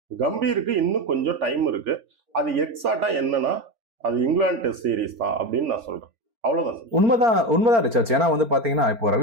கம்பீருக்கு இன்னும் கொஞ்சம் டைம் இருக்கு. அது எக்ஸாக்டா என்னன்னா அது இங்கிலாந்து டெஸ்ட் சீரீஸ் தான் அப்படின்னு நான் சொல்றேன். அவ்வளவுதான். உண்மைதான் ரிச்சர்ட்ஸ். ஏன்னா வந்து பாத்தீங்கன்னா இப்போ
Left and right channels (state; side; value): late; left; 4.4 ms